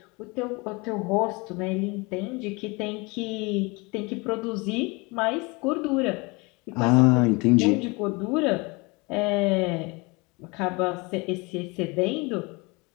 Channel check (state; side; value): quieter; right; 27.1 dB